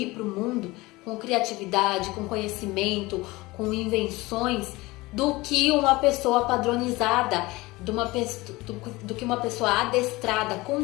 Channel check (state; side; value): quieter; right; 21.3 dB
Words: para o mundo, com criatividade, com conhecimento, com invenções, do que uma pessoa padronizada, do que uma pessoa adestrada,